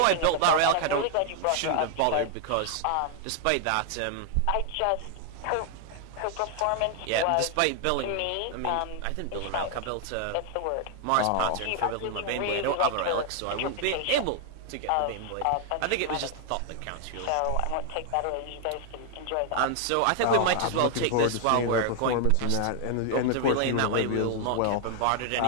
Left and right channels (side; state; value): both; different; correlation 0.00